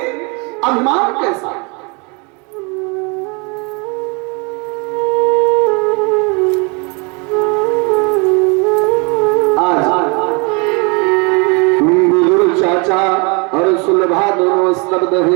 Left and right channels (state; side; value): quieter; left; 31.7 dB